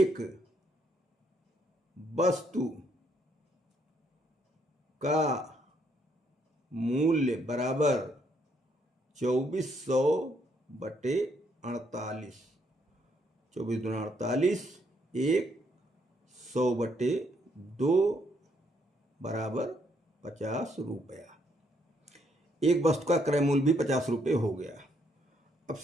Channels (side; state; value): both; normal; correlation 0.72